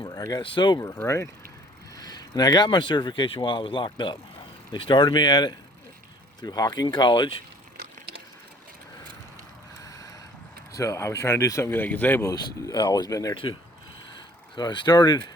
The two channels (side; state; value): both; normal; correlation 0.55